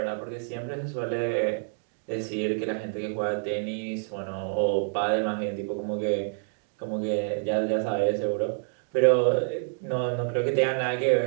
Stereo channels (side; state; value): left; silent; digital silence